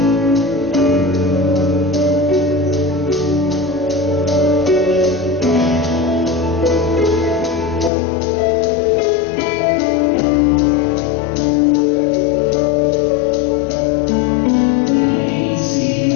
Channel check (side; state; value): right; drops out; at 7.9 s